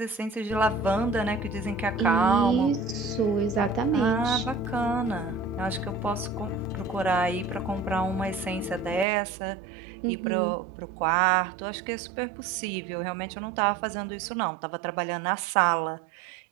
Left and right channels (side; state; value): left; drops out; at 9.1 s